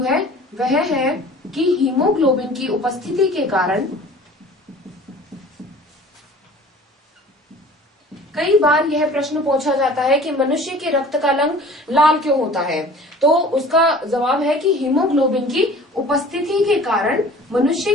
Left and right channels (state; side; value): normal; both; correlation 0.46